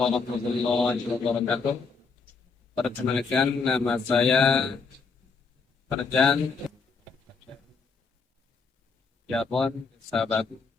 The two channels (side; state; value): right; quieter; 4.8 dB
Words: wabarakatuh. Perkenalkan, nama saya Farjan Jabon Sabagu,